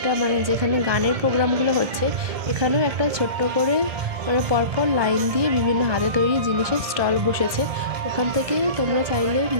মানে যেখানে গানের প্রোগ্রামগুলো হচ্ছে এখানেও একটা ছোট্ট করে মানে পরপর লাইন দিয়ে বিভিন্ন হাতে তৈরি জিনিসের স্টল বসেছে। ওখান থেকে তোমরা চাইলে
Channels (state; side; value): late; left; 1.7 ms